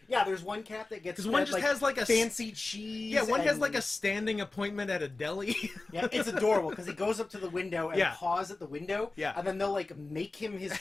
Yeah, there's one cat that gets one just has like a fancy cheese. Yeah, one has like a standing appointment at a deli. Yeah, it's adorable because he goes up to the window and paws at the window. Yeah, and then they'll like make him his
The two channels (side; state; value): right; quieter; 3.3 dB